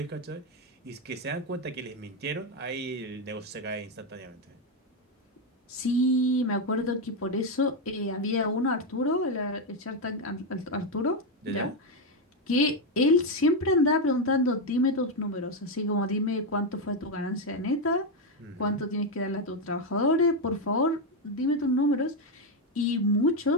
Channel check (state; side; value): normal; both; correlation 0.05